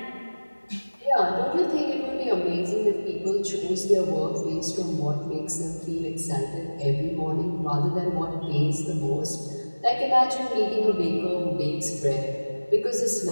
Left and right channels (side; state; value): both; inverted; correlation -1.00